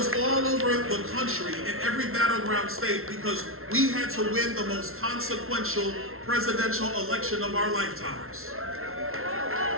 all over the country in every battleground state because we had to win the most consequential presidential election of our lifetimes.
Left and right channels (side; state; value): left; late; 0.62 ms